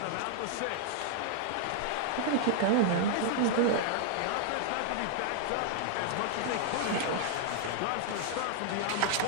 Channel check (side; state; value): both; different; correlation -0.01